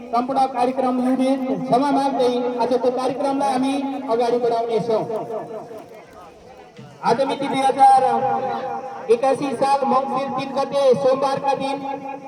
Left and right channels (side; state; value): both; identical; correlation 1.00